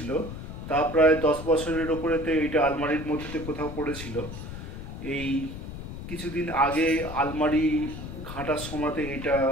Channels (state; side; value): noise; left; rumble, 9 dB below the sound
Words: তা প্রায় 10 বছরের ওপরেতে এটা আলমারির মধ্যেতে কোথাও পড়েছিল। এই কিছুদিন আগে আলমারি ঘাঁটার সময়তে এটা